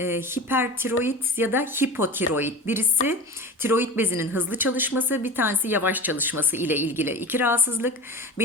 ya da hipotiroid. Birisi tiroid bezinin hızlı çalışması, bir tanesi yavaş çalışması ile ilgili iki rahatsızlık.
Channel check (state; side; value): normal; both; correlation 0.33